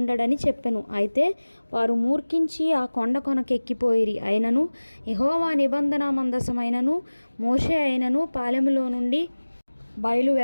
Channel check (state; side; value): inverted; both; correlation -1.00